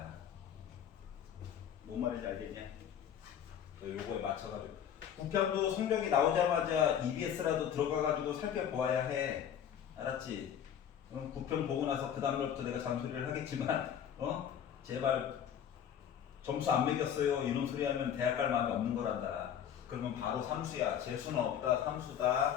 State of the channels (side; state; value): right; quieter; 9.1 dB